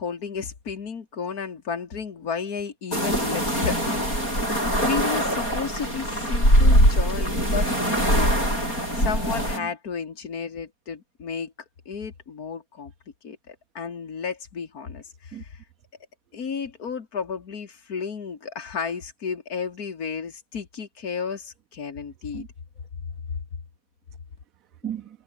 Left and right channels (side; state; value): right; late; 4.3 ms